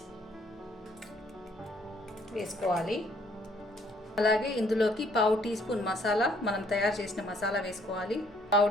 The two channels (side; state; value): both; normal; correlation 0.65